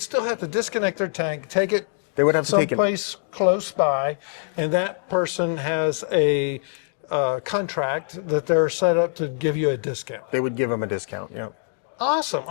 have to disconnect their tank, take it They would have to take it. someplace close by, and that person has a contract that they're set up to give you a discount. They would give them a discount. Yeah. Awesome.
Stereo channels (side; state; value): right; silent; 61 dB below the other